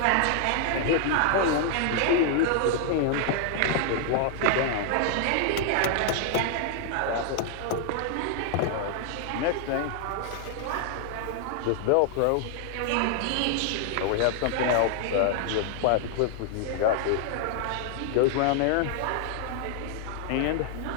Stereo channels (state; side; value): different; both; correlation 0.00